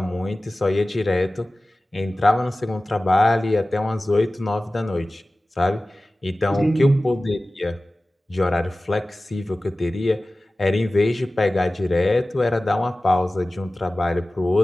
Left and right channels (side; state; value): both; normal; correlation 0.97